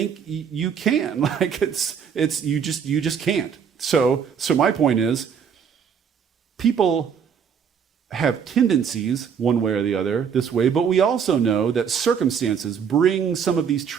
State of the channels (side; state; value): left; quieter; 7.2 dB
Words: you can. Like, you just can't. So my point is, people have tendencies one way or the other this way, but we also know that circumstances bring some of these